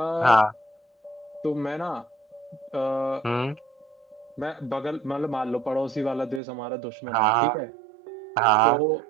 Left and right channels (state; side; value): drops out; left; at 6.4 s